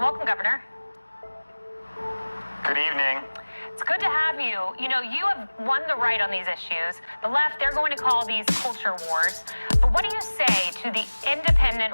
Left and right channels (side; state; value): both; inverted; correlation -1.00